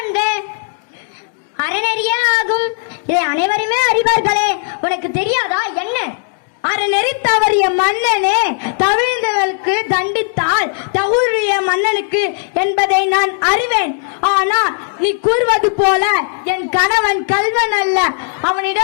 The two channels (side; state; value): right; silent; digital silence